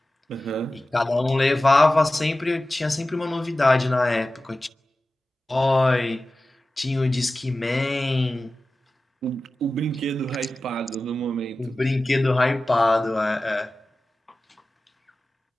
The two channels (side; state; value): both; normal; correlation 0.95